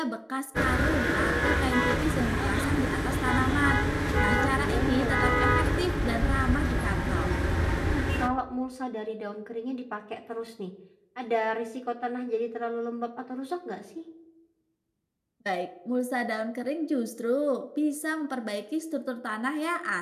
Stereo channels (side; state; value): both; identical; correlation 1.00